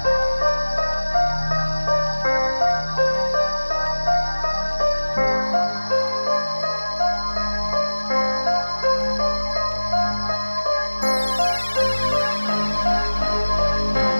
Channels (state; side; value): inverted; both; correlation -1.00